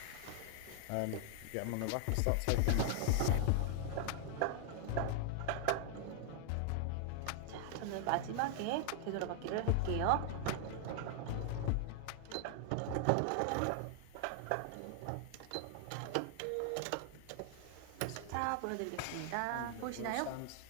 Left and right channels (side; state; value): both; different; correlation 0.00